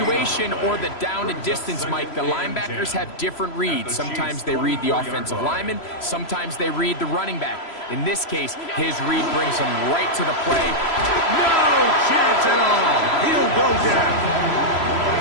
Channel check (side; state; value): right; late; 3.0 ms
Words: or the down and distance, Mike, the linebackers have different reads. Sometimes they read the offensive lineman. Sometimes they read the running back. In this case, his read brings him right to the play. No chance at all. He'll go down.